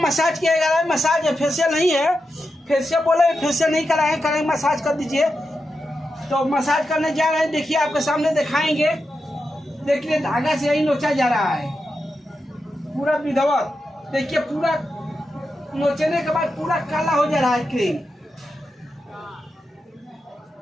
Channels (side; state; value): both; normal; correlation 0.88